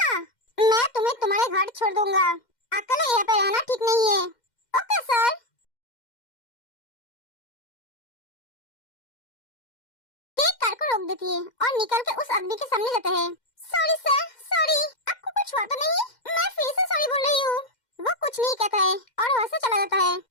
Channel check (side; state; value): right; late; 2.1 ms